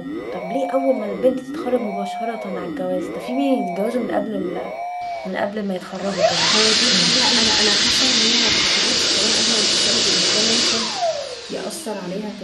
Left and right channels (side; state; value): both; identical; correlation 1.00